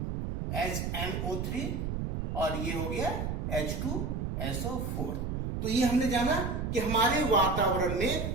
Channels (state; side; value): noise; right; rumble, 2 dB below the sound